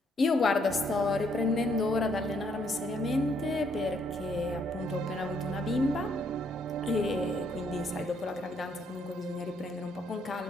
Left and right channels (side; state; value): both; normal; correlation 0.70